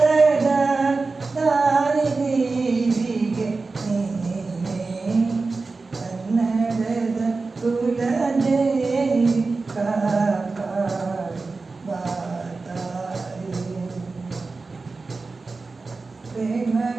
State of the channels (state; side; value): quieter; left; 3.9 dB